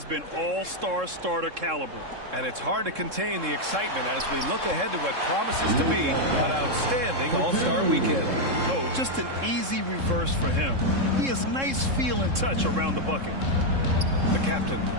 been all-star starter caliber. And it's hard to contain the excitement as we look ahead to what promises to be an outstanding All-Star weekend. Oh, just an easy reverse for him. He has nice feel and touch around the bucket. The captain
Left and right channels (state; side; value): late; left; 3.7 ms